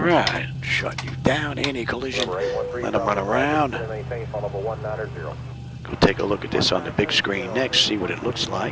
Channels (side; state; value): both; identical; correlation 1.00